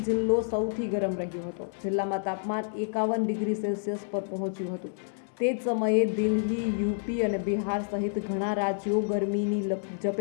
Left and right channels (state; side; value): silent; right; digital silence